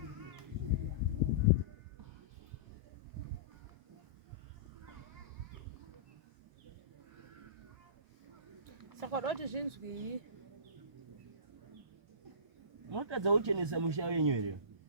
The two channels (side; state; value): left; late; 1.4 ms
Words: Saka wadati zvinzwi. Munotadza kuchenesa musha wenyu here?